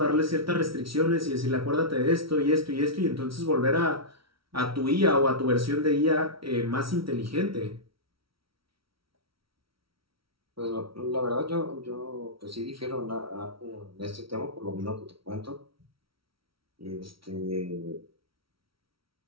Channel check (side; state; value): left; late; 0.75 ms